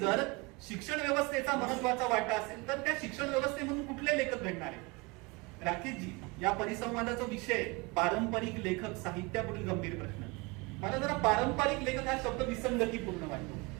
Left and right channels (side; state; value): left; quieter; 26.2 dB